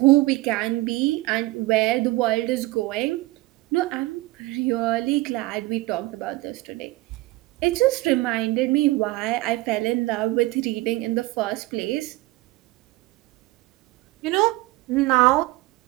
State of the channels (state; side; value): quieter; left; 19.8 dB